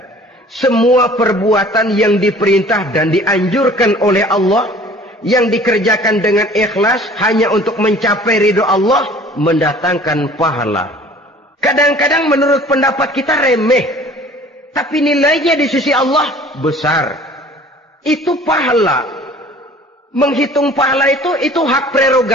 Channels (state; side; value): normal; both; correlation 0.49